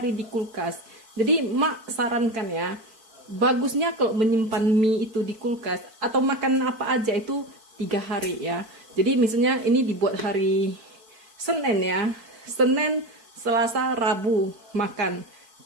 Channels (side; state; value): left; late; 4.5 ms